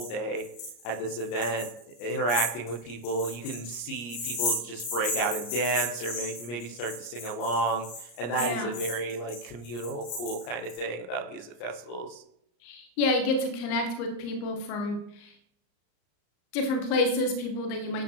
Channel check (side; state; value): right; late; 34 ms